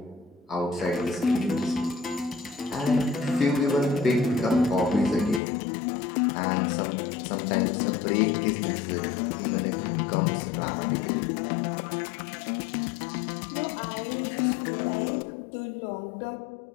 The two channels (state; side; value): drops out; right; at 5.4 s